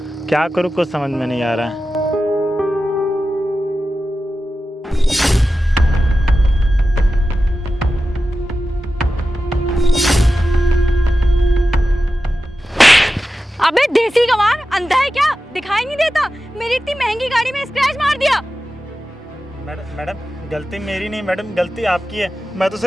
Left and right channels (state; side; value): normal; both; correlation 0.93